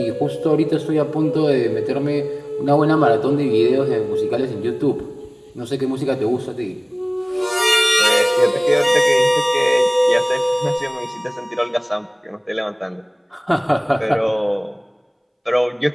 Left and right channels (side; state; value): both; identical; correlation 1.00